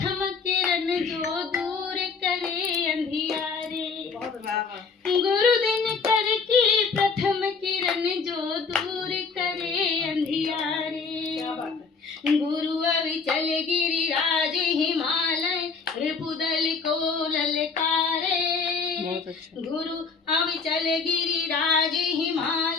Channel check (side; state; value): right; quieter; 5.0 dB